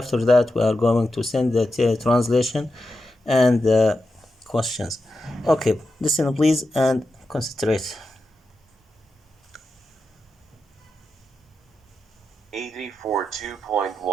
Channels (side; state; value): both; normal; correlation 0.89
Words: that we are going to send the translation and the questions. Okay, listen please and concentrate. 84